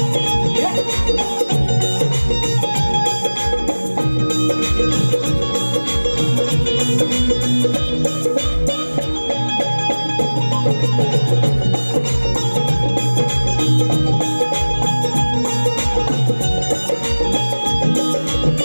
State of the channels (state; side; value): inverted; both; correlation -1.00